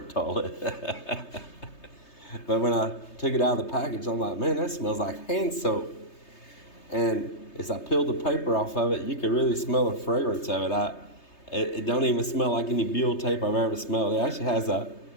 toilet. But when I took it out of the package, I'm like, man, that smells like hand soap. And as I peeled the paper off of it, you could really smell the fragrance of it. It don't even smell like any buhl tape I've ever smelled. It actually has a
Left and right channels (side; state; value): right; late; 3.3 ms